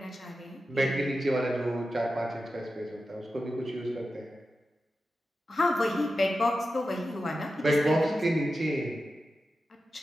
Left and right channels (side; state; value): both; normal; correlation 0.91